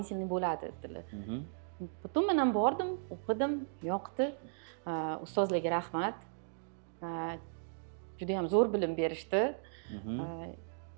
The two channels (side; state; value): left; silent; digital silence